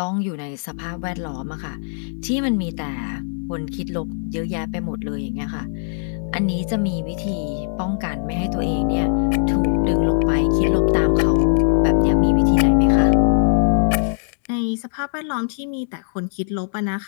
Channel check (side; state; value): right; silent; 65 dB below the other